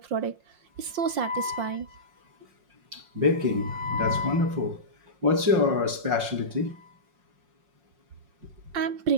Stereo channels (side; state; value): left; late; 5.6 ms